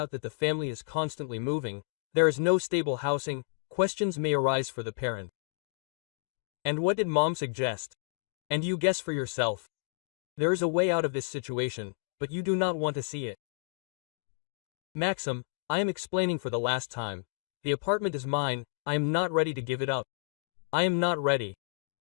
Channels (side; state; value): right; silent; digital silence